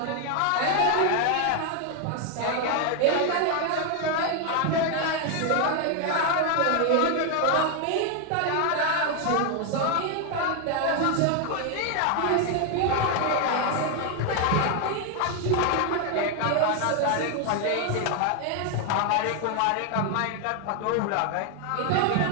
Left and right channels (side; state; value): both; different; correlation 0.01